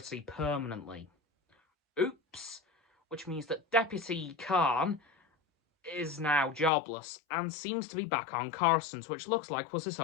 permanently. Oops! Which means that Deputy Khan is now jobless and seems to be back on Coruscant, which looks like was his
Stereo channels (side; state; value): right; drops out; at 6.7 s